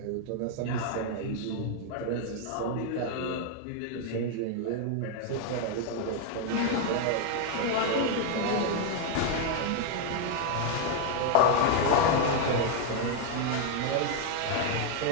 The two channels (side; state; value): both; different; correlation 0.01